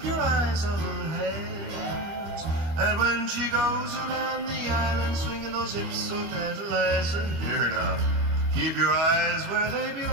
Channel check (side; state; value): left; late; 25 ms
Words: your eyes on her hands. And when she goes around the island, swinging those hips so tantalizing, here now, keep your eyes where they